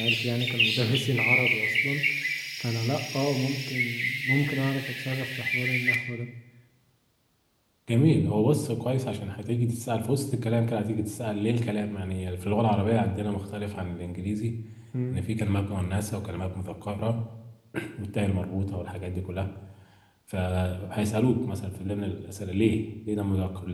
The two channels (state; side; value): identical; both; correlation 1.00